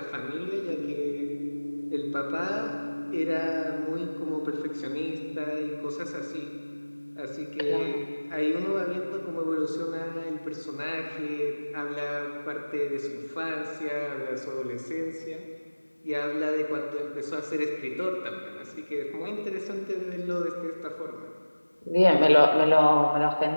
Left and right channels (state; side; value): inverted; both; correlation -1.00